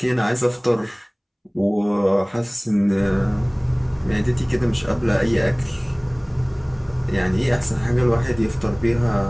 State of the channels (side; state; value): both; identical; correlation 1.00